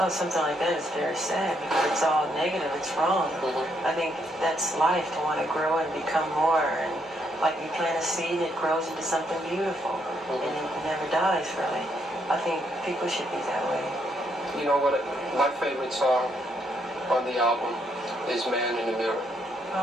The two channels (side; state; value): both; normal; correlation 0.74